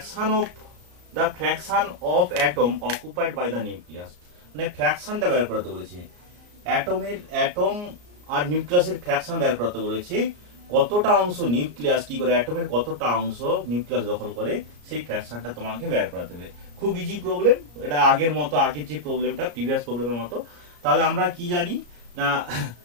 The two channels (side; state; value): left; late; 34 ms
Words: fraction of atom occupied by the nucleus, মানে ফ্র্যাকশনটা বের করতে বলেছে, অ্যাটম আর নিউক্লিয়াসের ফ্র্যাকশন বের করতে বলেছে, কতটা অংশ নিউক্লিয়াস কি করে, অ্যাটমের কতটা অংশ নিউক্লিয়াস দখল করে, সেই ফ্র্যাকশনটা তোমাকে বের করাতে হবে। খুব ইজি প্রবলেম এটা, আগের যে প্রবলেমটা প্রিভিয়াস প্রবলেমের মতো। তাহলে আমরা কি জানি না